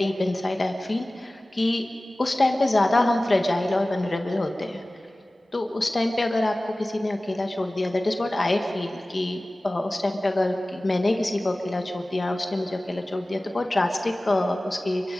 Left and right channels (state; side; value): normal; both; correlation 0.97